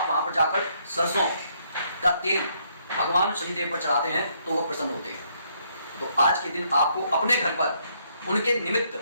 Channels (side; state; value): both; inverted; correlation -0.71